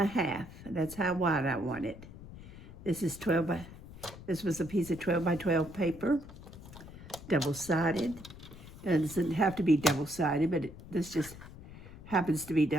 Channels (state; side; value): noise; left; rumble, 16 dB below the sound